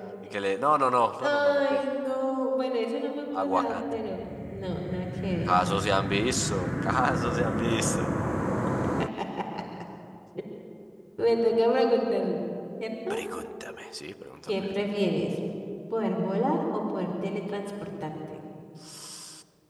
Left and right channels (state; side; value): identical; both; correlation 1.00